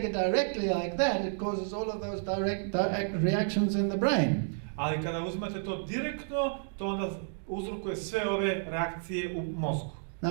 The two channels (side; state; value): left; silent; digital silence